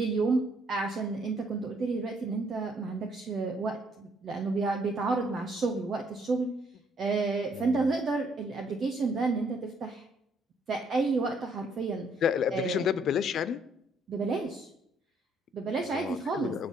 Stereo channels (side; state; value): both; normal; correlation 0.67